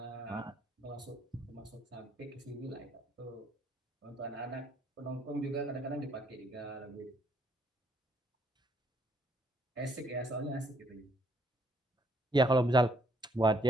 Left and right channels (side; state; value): both; normal; correlation 0.69